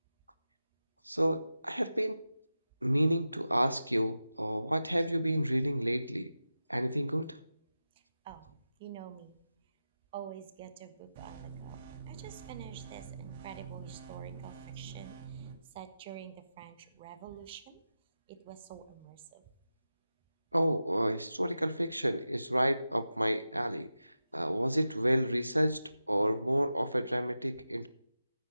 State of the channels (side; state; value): both; inverted; correlation -0.94